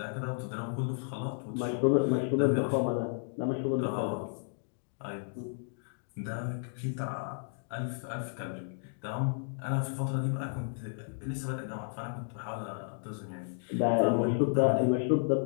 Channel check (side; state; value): right; silent; digital silence